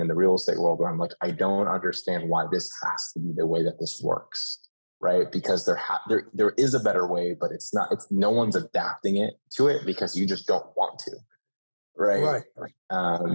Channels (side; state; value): both; inverted; correlation -1.00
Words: the real estate world where I'm like, I don't understand why this has to be the way that this works, right? Because there is a better way, but it's not. It's no one's adapting it to it because you just don't want to, right?